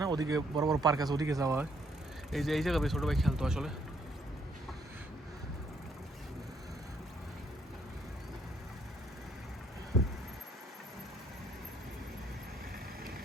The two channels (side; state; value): both; normal; correlation 0.69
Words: না। ওদিকে বড় বড় পার্ক আছে, ওদিকে যাওয়া হয়। এই যে এই জায়গায় ছোটো ভাই খেলতো আসলে।